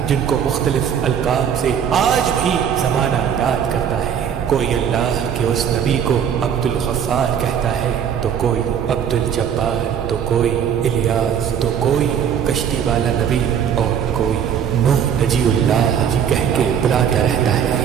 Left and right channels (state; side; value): quieter; left; 8.3 dB